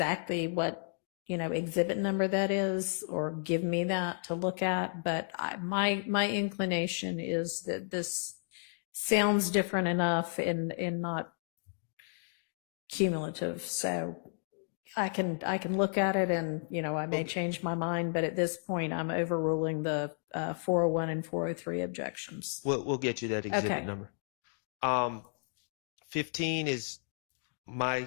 what, exhibit number that is, or give me that to look at, but my inclination is that this sounds different enough and not cumulative. So I can look at it and, I may change my mind, but at this point I'm overruling the 401 and 403 objections. We'll get you that exhibit Okay. number. 15 is my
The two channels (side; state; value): right; silent; digital silence